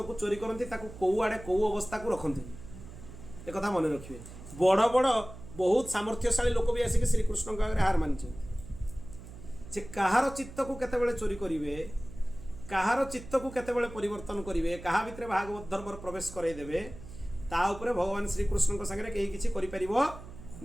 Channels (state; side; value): noise; right; hum, 15 dB below the sound